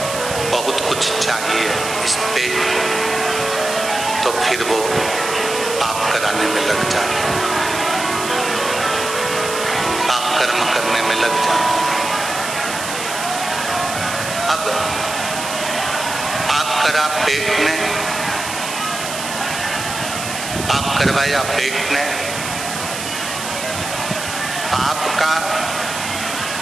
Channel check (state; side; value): noise; right; hiss, 7 dB below the sound